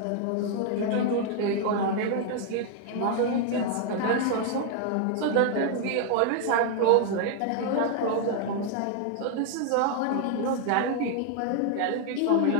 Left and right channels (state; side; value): different; both; correlation 0.00